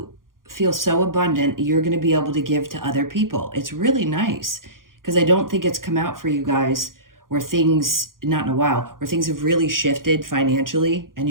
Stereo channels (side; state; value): left; late; 0.91 ms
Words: feel so abundant, you're going to be able to give to other people. It's really nice. Because I don't think it's come out for you guys where things, not in a while, where things have really shifted financially and